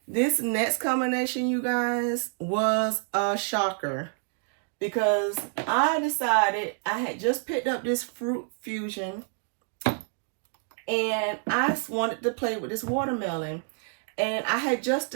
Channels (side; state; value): left; silent; 55 dB below the other